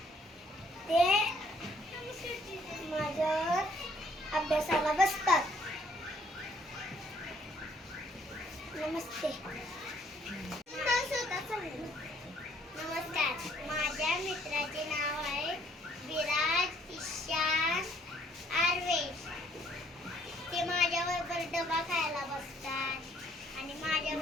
ते माझ्यावर अभ्यासाला बसतात. नमस्ते. नमस्कार. माझ्या मित्राचे नाव आहे विराज ईशान आर्वेश. ते माझ्याबरोबर डबा खायला बसतात आणि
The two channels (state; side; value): normal; both; correlation 0.64